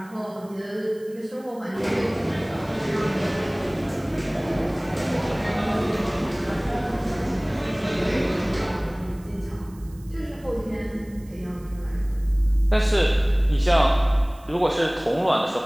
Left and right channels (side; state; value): right; noise; hiss, 27 dB below the sound